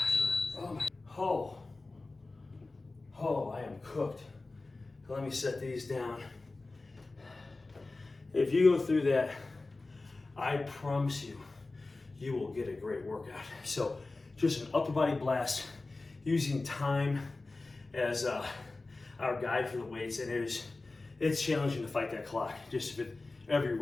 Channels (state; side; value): quieter; right; 3.4 dB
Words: Oh my. Oh, I am cooked. Let me set these down. If you go through that, I promise you, you will get a great workout. So just an upper body blast using time as our guide for the weights, and it's challenging to fight that clock just with every